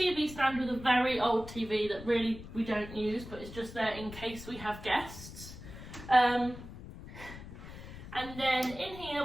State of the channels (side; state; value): left; noise; rumble, 13 dB below the sound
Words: stand with a very old TV that really we don't use, but it's just there in case we have guests. And then in here